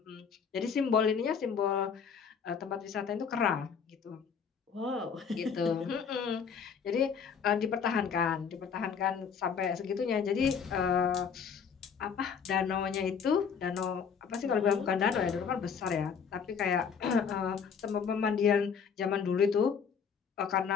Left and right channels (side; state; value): right; quieter; 6.6 dB